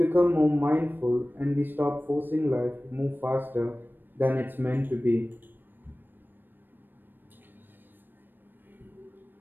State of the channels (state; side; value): late; left; 0.093 ms